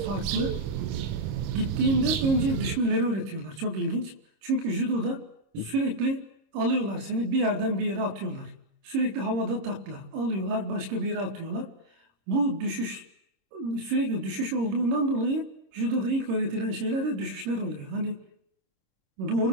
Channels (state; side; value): late; left; 26 ms